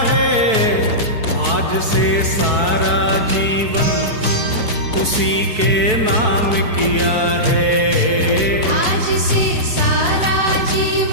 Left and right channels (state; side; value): late; left; 4.6 ms